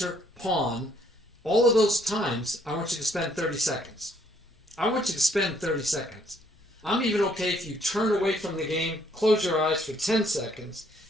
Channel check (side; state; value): both; normal; correlation 0.67